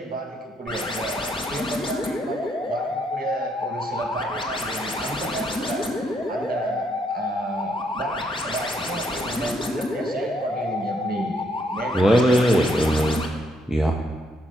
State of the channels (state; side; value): normal; both; correlation 0.72